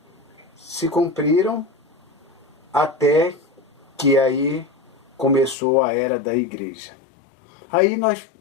se cumpriram até que aí começou a era da igreja. Aí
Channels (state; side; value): drops out; right; at 5.6 s